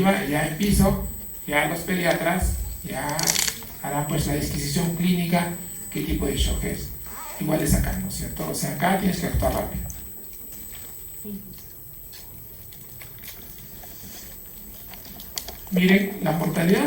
ya en piso, ya los pediatras ya harán pues la disquisición clínica, qué tipo de shock es. Igual de sacar, ¿no es cierto? O sea, acá tienes que actuar rápido. Miren, la mortalidad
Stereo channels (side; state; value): both; identical; correlation 1.00